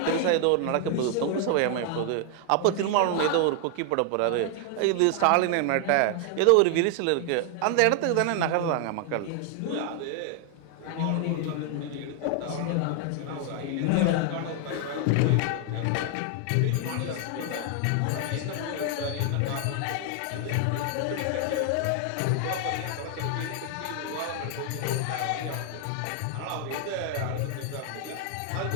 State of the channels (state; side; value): different; both; correlation 0.00